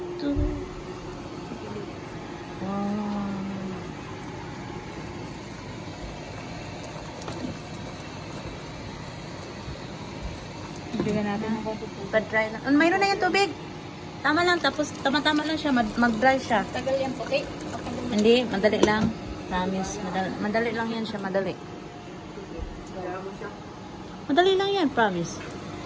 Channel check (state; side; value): identical; both; correlation 1.00